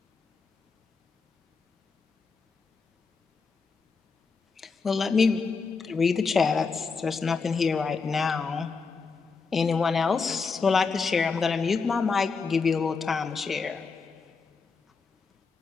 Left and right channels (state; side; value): quieter; right; 4.9 dB